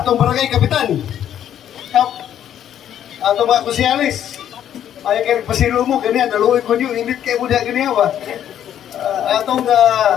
barangay kapitan, atong mga kusyalis ay kay pasiro mo ganyan naluoy ko niyo init kay mo diha ganyan ba. Atong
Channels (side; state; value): right; quieter; 10.4 dB